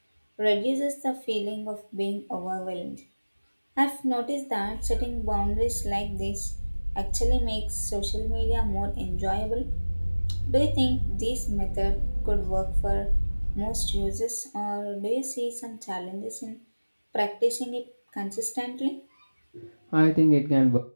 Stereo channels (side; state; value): both; inverted; correlation -1.00